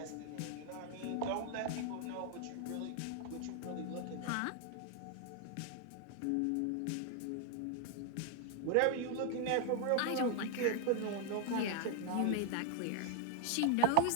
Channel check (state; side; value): different; both; correlation 0.00